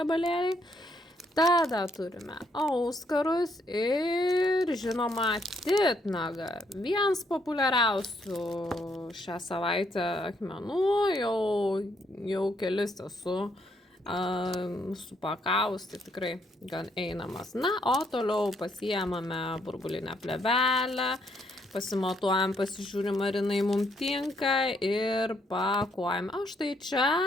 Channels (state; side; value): normal; both; correlation 0.72